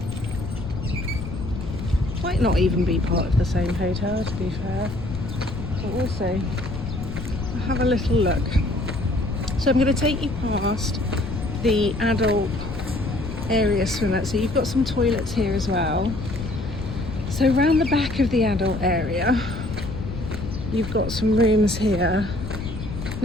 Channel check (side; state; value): left; noise; rumble, 8 dB below the sound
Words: Might not even be part of the same hotel, to be fair. But also, I'll have a little look. So I'm going to take you past the adult area swimmer. So you've got some toilets here as well. So around the back of the adult area, you've got some rooms here.